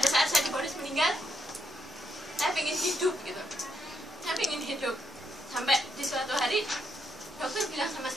saat saya divonis meninggal, saya pengen hidup gitu. Saya pengen hidup. Sampai di suatu hari dokter bilang sama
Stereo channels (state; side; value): normal; both; correlation 0.78